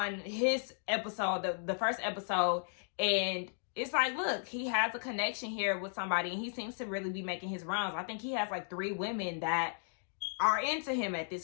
his episode, the first episode, and it's like, look, he has a connection here with somebody, and he seems to really be making his rounds. I think he has like 3 women that are into him at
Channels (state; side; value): silent; right; digital silence